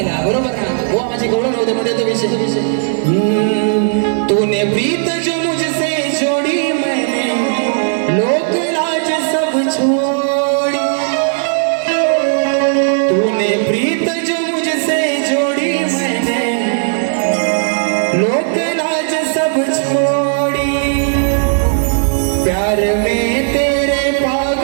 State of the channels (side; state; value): left; silent; digital silence